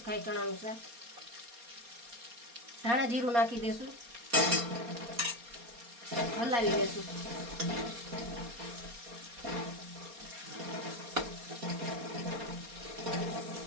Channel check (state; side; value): late; left; 4.2 ms